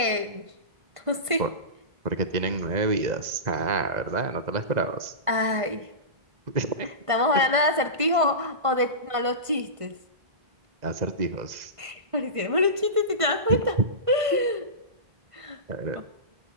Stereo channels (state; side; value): late; left; 1.5 ms